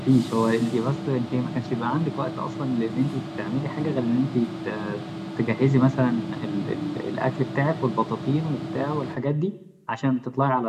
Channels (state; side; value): identical; both; correlation 1.00